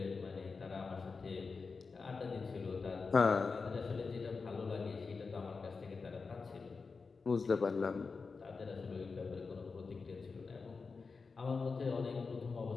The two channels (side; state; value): right; quieter; 4.6 dB